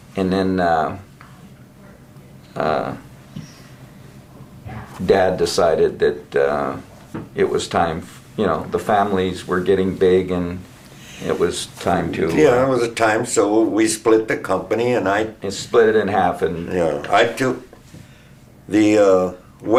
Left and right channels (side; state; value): both; identical; correlation 1.00